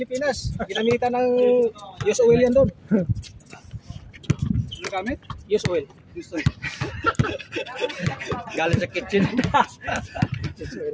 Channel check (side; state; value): both; identical; correlation 1.00